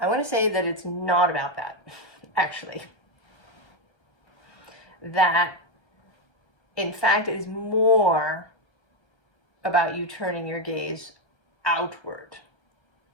want to say that it's not about that, actually. That, in fact, it is more about you turning your gaze outward.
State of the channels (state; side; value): late; right; 1.3 ms